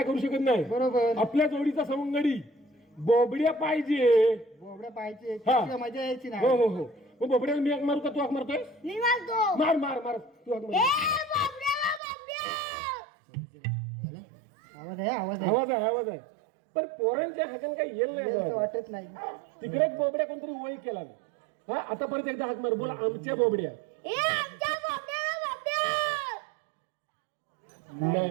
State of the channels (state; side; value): drops out; left; at 12.0 s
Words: करू शकत नाही. बरोबर. आपल्या जोडीचा सवंगडी बोबड्या पाहिजे. बोबड्या पाहिजे. हा. तिला मजा यायची हो नाही. हो हो. मग बोबड्याला मी हाक मारू का, तू हाक मारतोय? मी मारतो. मार मार मार, तू हाक ए मार. बाबड्याला बाबड्या. आवाज आहे आवाज आहे. आवाज आहे, आवाज आहे. पण पोरांच्या हाताने काही येईल असं नाही. वाटत नाही. तिकडे एक बोबड्या कोणतरी वय केला ना. हा, आता परत एकदा हाक मार, बोला आमच्या बोबड्या. ए आमच्या बाबड्याला बाबड्या. नाही